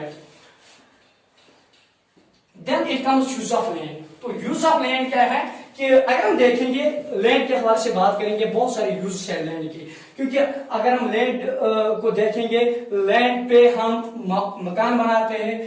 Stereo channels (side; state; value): both; identical; correlation 1.00